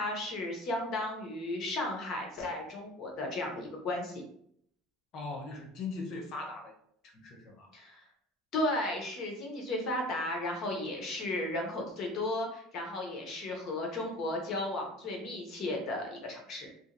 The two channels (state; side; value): normal; both; correlation 0.40